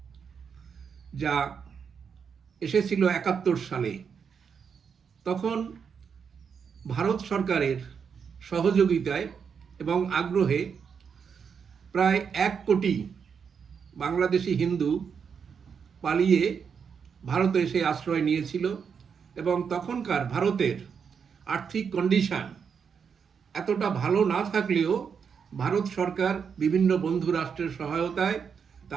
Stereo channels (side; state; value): left; quieter; 6.6 dB